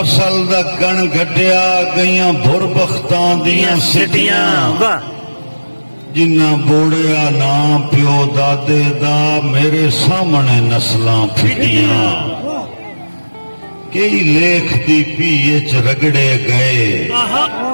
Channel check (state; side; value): inverted; both; correlation -1.00